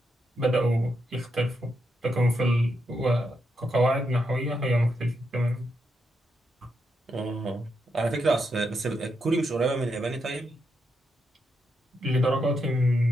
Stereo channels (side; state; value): both; normal; correlation 0.82